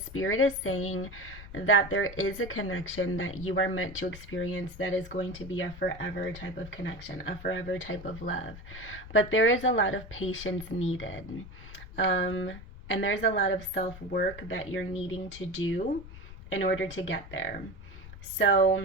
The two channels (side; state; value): left; noise; rumble, 15 dB below the sound